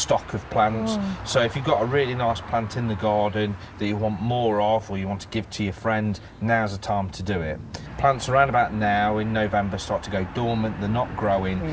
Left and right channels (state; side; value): identical; both; correlation 1.00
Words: of plants. So if you've got a really nice plant in the garden that you want more of, or you want to give to your friend, now's the time to do it. Plants around about now in November start to go dormant, they're not